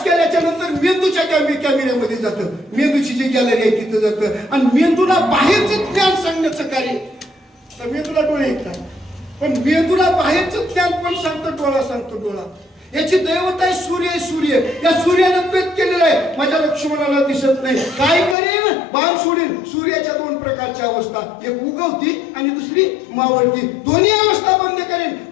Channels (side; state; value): right; drops out; at 18.4 s